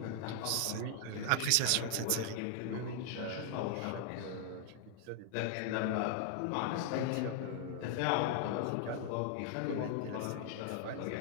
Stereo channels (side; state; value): both; different; correlation 0.00